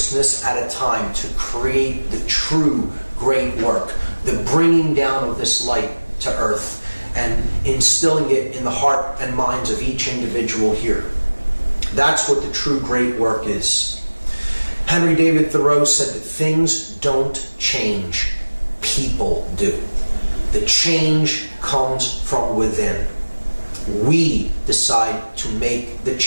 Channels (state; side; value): inverted; both; correlation -1.00